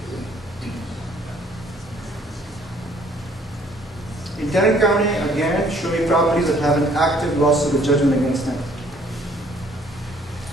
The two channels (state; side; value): normal; both; correlation 0.60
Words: In Tarrant County, again, show me properties that have an active lawsuit or judgment against them.